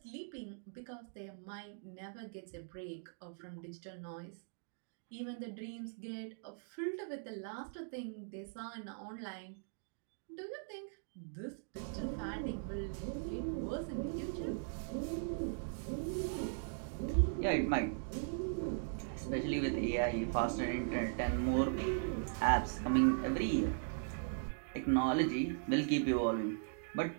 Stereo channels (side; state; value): left; silent; digital silence